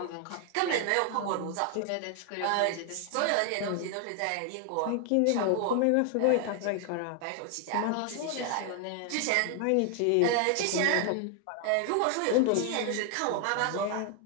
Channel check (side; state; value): both; different; correlation 0.00